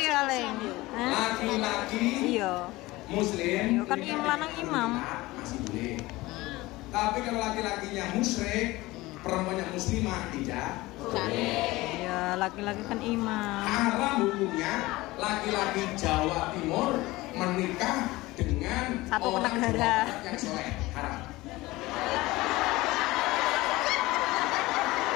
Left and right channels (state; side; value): quieter; right; 19.8 dB